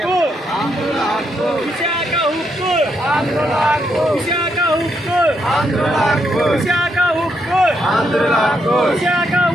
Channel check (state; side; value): normal; both; correlation 0.78